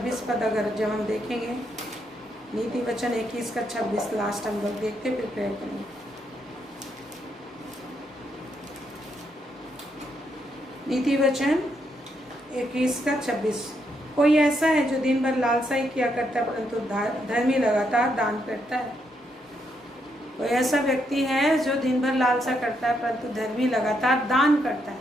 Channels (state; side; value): normal; both; correlation 0.77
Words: पद अगर जब हम देखेंगे, नीति वचन 21 का 26 लास्ट हम लोग देखते फिर प्रेयर करेंगे। नीति वचन 21 का 26, कोई ऐसा है जो दिन भर लालसा ही किया करता है परंतु धर्मी लगातार दान करता है। कोई ऐसा व्यक्ति है जो दिन भर लालसा करता है परंतु धर्मी लगातार दान करता